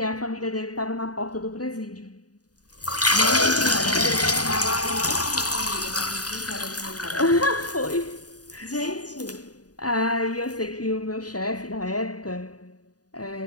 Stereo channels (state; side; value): late; right; 0.68 ms